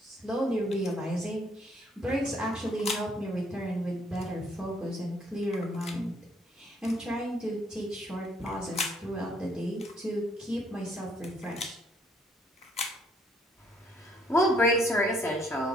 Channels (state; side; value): normal; both; correlation 0.66